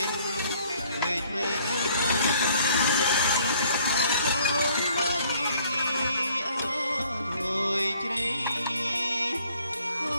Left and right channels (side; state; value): both; inverted; correlation -0.60